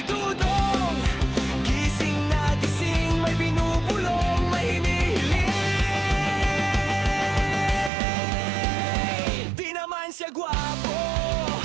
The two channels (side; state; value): left; drops out; at 7.9 s